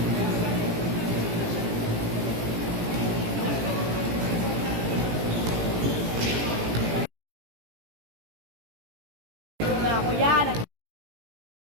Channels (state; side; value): late; left; 18 ms